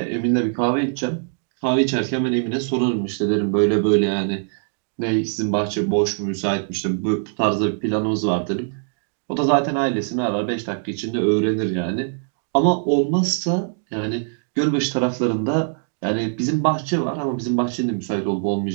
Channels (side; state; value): left; silent; digital silence